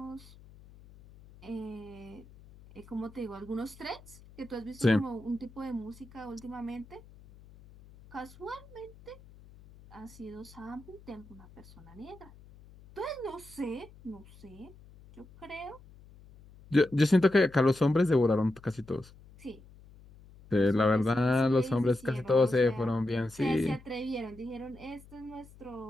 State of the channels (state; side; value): noise; left; hum, 22 dB below the sound